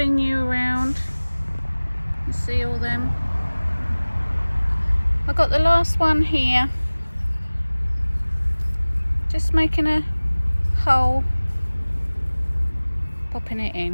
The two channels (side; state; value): both; inverted; correlation -1.00